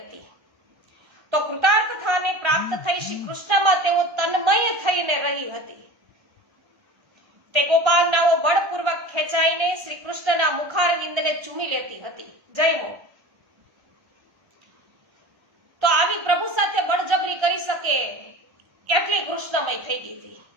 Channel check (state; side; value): late; left; 1.3 ms